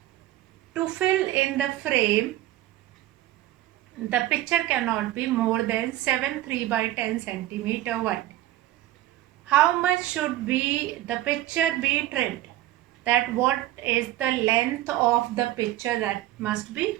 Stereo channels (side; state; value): left; quieter; 15.0 dB